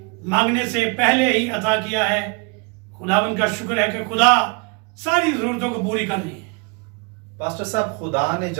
मांगने से पहले ही अता किया है। खुदावन का शुक्र है कि खुदा सारी जरूरतों को पूरी कर रही है। पास्टर साहब, खुदा ने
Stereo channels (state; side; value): quieter; left; 32.4 dB